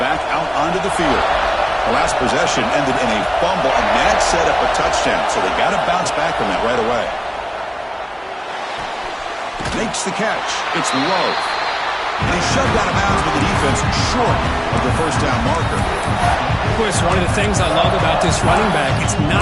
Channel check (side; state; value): both; identical; correlation 1.00